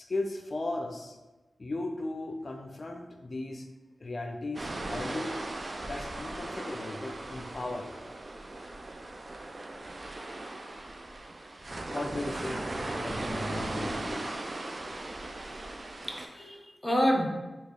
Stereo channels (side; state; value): both; normal; correlation 0.94